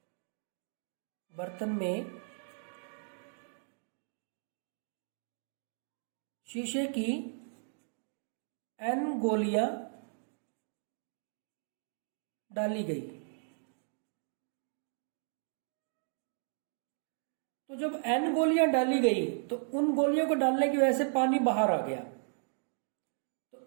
में शीशे की n गोलियां डाली गई। तो जब n गोलियां डाली गई तो उन गोलियों को डालने की वजह से पानी बाहर आ गया। तो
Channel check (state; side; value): silent; left; digital silence